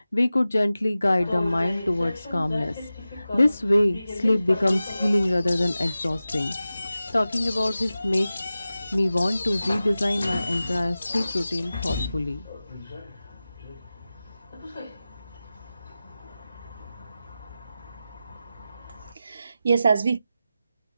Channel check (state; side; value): inverted; both; correlation -0.94